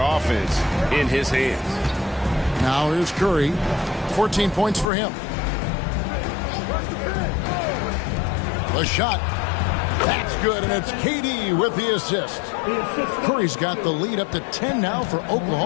offense in his hands. Now here's Curry, 14 points for him. The shot, that's good, and it's KD with the assist. Curry's got the lead up to 10 now for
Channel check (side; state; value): right; drops out; at 4.9 s